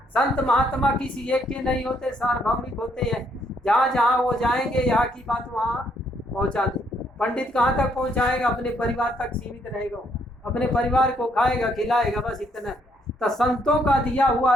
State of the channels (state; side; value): normal; both; correlation 0.71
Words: संत महात्मा किसी एक के नहीं होते, सार्वभौमिक होते हैं। जहाँ जहाँ वो जाएंगे, यहाँ की बात वहाँ पहुंचा दे। पंडित कहाँ तक पहुंचाएगा? अपने परिवार तक सीमित रहेगा, अपने परिवार को खाएगा, खिलाएगा, बस इतना। तो संतों का दिया हुआ